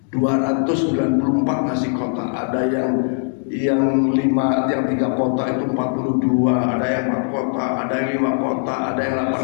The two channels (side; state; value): right; silent; 66 dB below the other